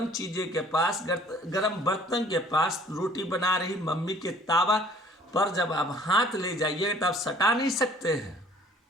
चीज़ें के पास, गर्म बर्तन के पास, रोटी बना रही मम्मी के तावा पर जब आप हाथ ले जाइए तो आप सटा नहीं सकते हैं,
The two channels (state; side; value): normal; both; correlation 0.54